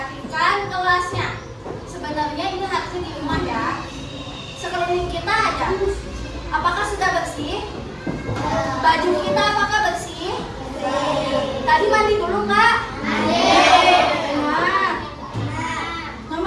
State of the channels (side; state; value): both; identical; correlation 1.00